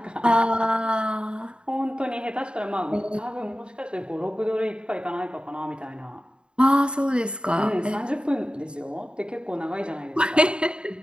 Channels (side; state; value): left; late; 0.052 ms